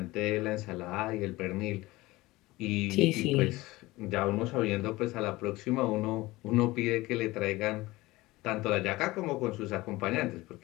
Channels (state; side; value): quieter; right; 19.7 dB